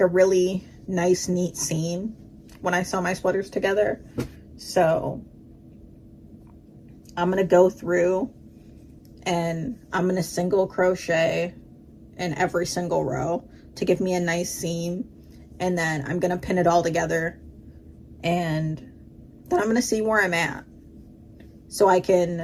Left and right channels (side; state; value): both; identical; correlation 1.00